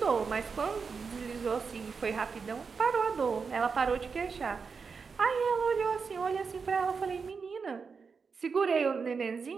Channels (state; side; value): quieter; left; 5.3 dB